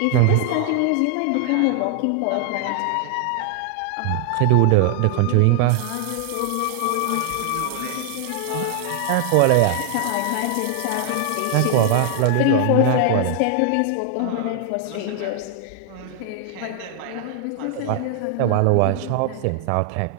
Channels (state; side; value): different; both; correlation 0.00